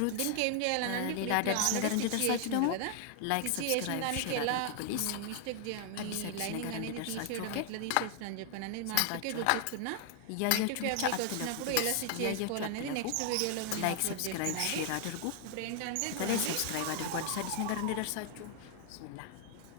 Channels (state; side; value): different; both; correlation 0.00